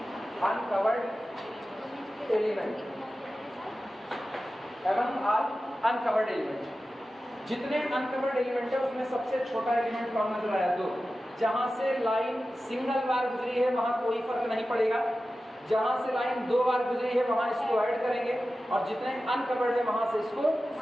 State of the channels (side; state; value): both; normal; correlation 0.94